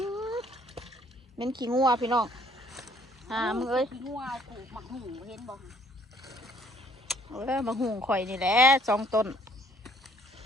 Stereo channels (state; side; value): normal; both; correlation 0.61